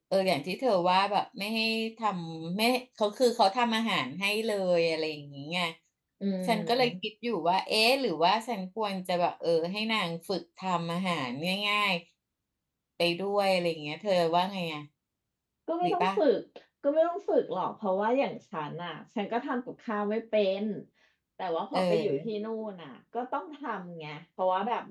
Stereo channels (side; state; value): both; identical; correlation 1.00